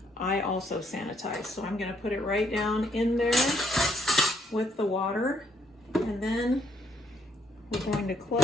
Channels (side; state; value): both; normal; correlation 0.71